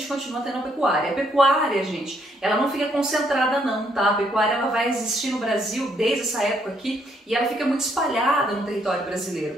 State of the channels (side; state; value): both; normal; correlation 0.71